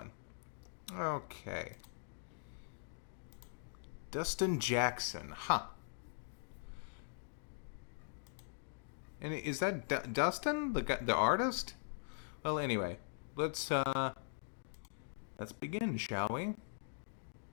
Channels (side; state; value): right; silent; digital silence